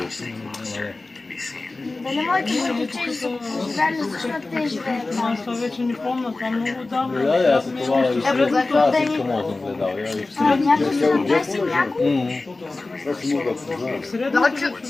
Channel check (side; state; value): right; quieter; 3.3 dB